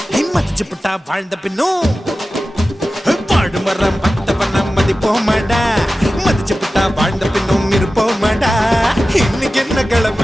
மதிச்சு புட்டா வாழ்ந்த பின்னும் வாழு வர மட்ட பண்ண மதிப்போமடா மதிச்சு புட்டா வாழ்ந்த பின்னும் இருப்போமடா இன்னைக்கு என்ன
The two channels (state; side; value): normal; both; correlation 0.95